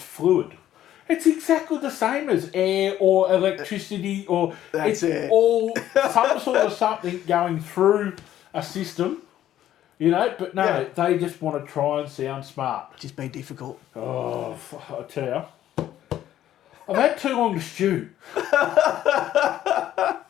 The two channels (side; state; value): right; quieter; 12.2 dB